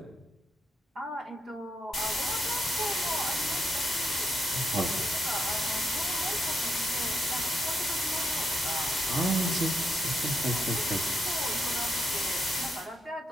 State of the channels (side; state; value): both; normal; correlation 0.81